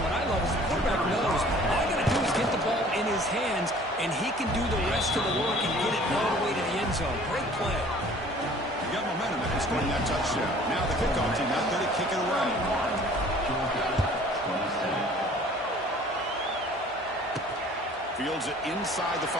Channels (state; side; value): normal; both; correlation 0.51